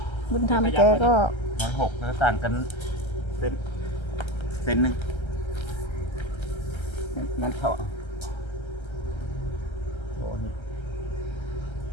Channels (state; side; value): late; right; 1.3 ms